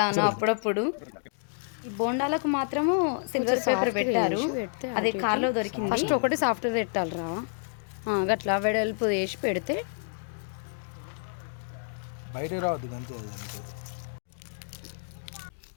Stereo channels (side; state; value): right; silent; digital silence